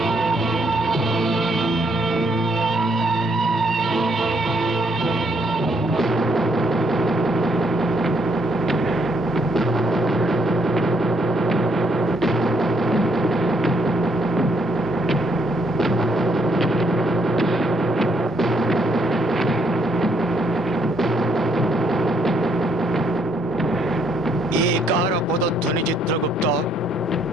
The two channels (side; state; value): both; normal; correlation 0.71